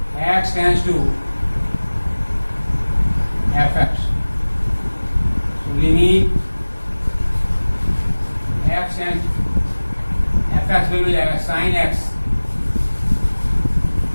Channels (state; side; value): inverted; both; correlation -1.00